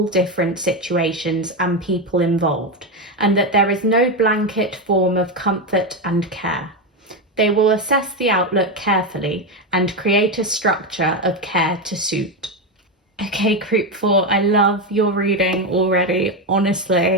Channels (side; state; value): both; normal; correlation 0.11